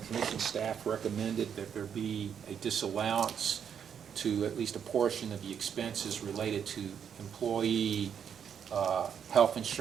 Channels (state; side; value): quieter; left; 7.9 dB